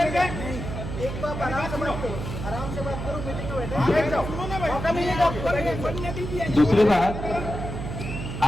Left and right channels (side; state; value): right; noise; hum, 6 dB below the sound